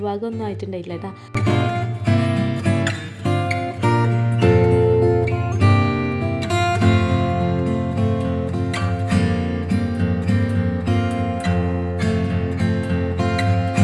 ഒന്നും ആയിട്ടുണ്ടായില്ല കേട്ടാ.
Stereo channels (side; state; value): both; identical; correlation 1.00